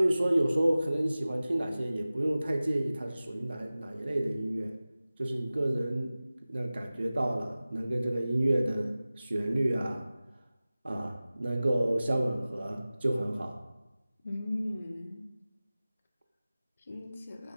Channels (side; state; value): both; inverted; correlation -0.97